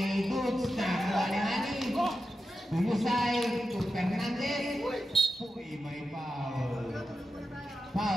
Goods, nakakuha ni Hani. Tuyusay, to Fernandez. Uy, may foul.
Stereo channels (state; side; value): normal; both; correlation 0.90